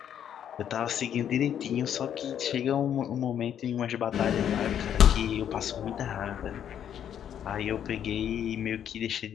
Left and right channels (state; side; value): quieter; right; 9.4 dB